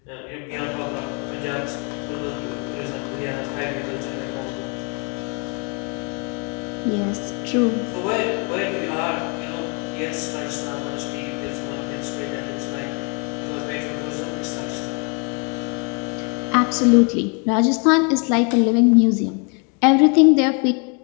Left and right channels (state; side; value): quieter; right; 35.5 dB